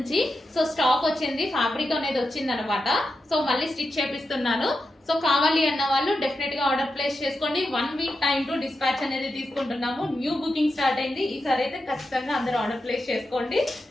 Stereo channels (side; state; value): both; normal; correlation 0.88